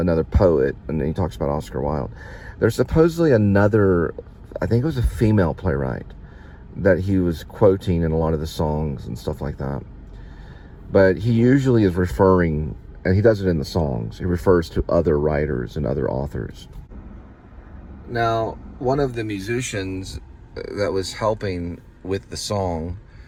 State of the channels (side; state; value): both; identical; correlation 1.00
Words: poet, and then he talks about Oscar Wilde. There's supposedly another, I think it was a female playwright, that he was quoting in a lot of the songs and stuff like that. But he usually is referring, and he does it in the songs, he refers to other writers and other authors. Now, one of the musicians that was helping with the song,